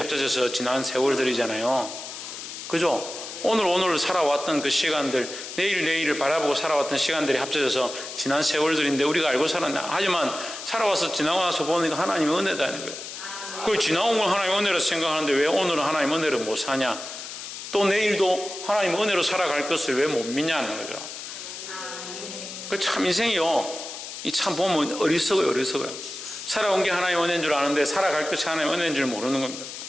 지난 세월들이잖아요. 그죠? 오늘 살아왔던 그 시간들, 내일을 바라보고 살아왔던 시간들이 합쳐져서 지난 세월들인데 우리가 알고 살았나? 하지만 살아와서 지나고 나서 보니까 하나님의 은혜다는 거예요. 그 지나온 걸 하나님의 은혜로 생각하는데 왜 오늘은 하나님의 은혜로 못 사냐? 또 내일도 하나님의 은혜로 살아갈 것을 왜 못 믿냐는 거죠. 그 참 인생이요. 이 참 보면 어리석어요. 살아온 게 하나님의 은혜인 줄 아는데 살아갈 것이 하나님의 은혜인 줄 모르는 겁니다.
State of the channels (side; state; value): left; noise; hiss, 10 dB below the sound